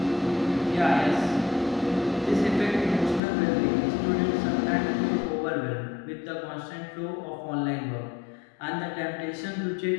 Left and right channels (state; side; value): drops out; right; at 3.2 s